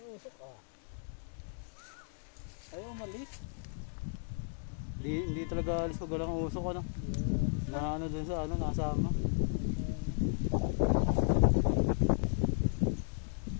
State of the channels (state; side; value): silent; right; 55 dB below the other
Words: usok ah. Ayaw umalis. Hindi talaga alis pag walang usok ano. Na ano dun sa ano, nasama.